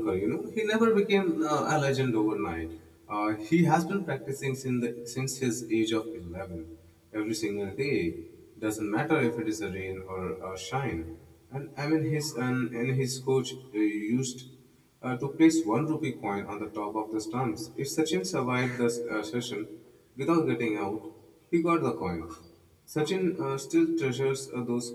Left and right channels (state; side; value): identical; both; correlation 1.00